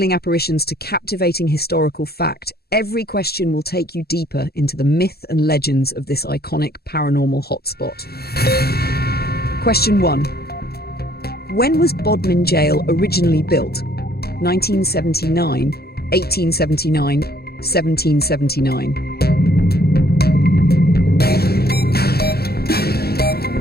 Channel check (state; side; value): late; right; 0.46 ms